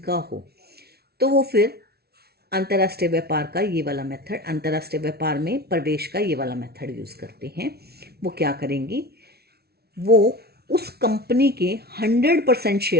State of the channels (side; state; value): left; late; 0.46 ms